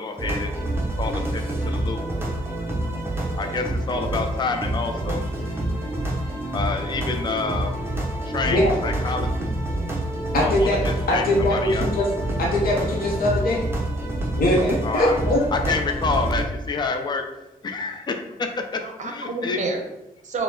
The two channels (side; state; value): both; normal; correlation 0.56